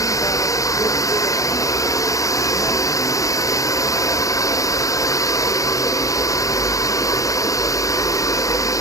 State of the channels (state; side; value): late; right; 0.16 ms